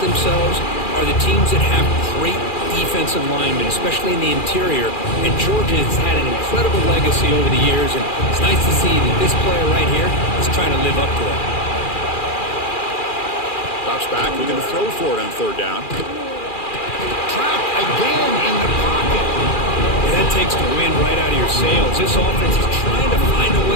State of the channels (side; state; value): right; late; 2.4 ms